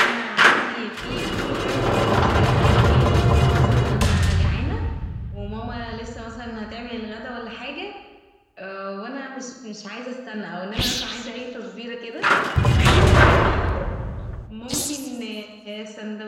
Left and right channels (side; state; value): both; identical; correlation 1.00